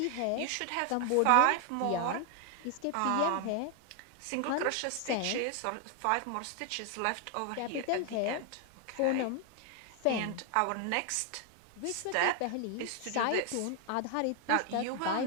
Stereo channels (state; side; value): different; both; correlation 0.00